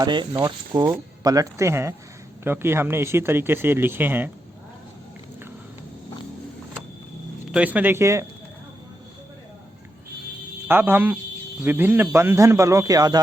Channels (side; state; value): both; normal; correlation 0.84